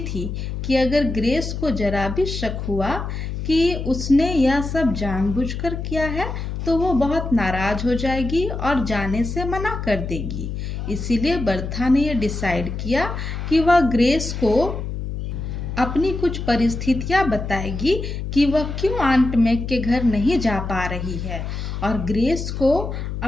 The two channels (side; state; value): left; noise; hum, 5 dB below the sound